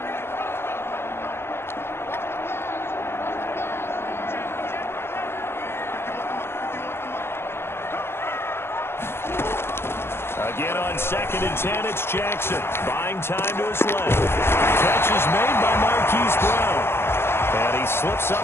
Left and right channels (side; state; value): right; late; 0.12 ms